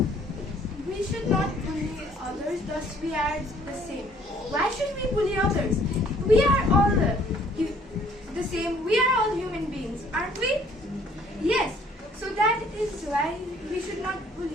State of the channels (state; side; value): normal; both; correlation 0.60